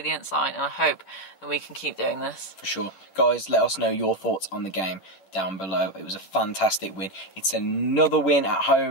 sign, and I hope that we can keep doing this. For sure. Guys, let us know your thoughts on the game down below. It was a fantastic win. It's another win at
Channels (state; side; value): late; right; 10 ms